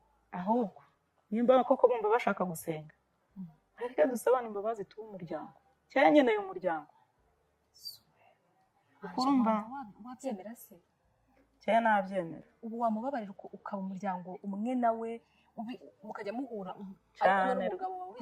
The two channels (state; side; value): identical; both; correlation 1.00